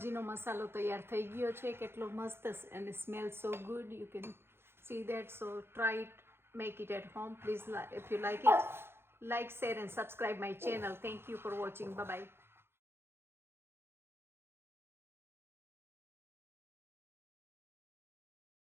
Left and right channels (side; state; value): left; late; 0.11 ms